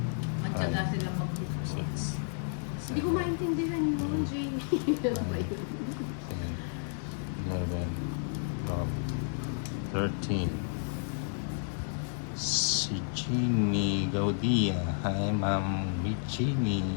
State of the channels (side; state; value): right; silent; digital silence